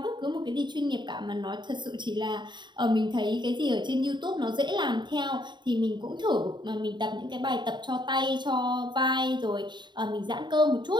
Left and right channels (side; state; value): left; late; 0.22 ms